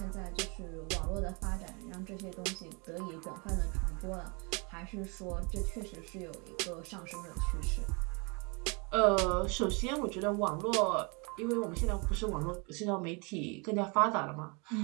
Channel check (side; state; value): left; quieter; 31.5 dB